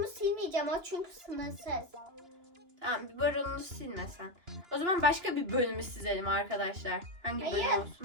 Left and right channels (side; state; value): left; late; 2.8 ms